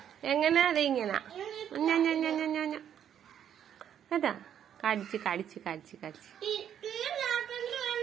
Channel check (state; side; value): quieter; left; 9.4 dB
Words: എങ്ങനെ അത് ഇങ്ങനെ കേട്ടാ? കടിച്ച്